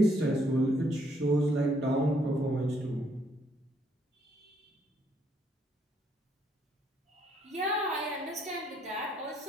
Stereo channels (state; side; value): normal; both; correlation 0.70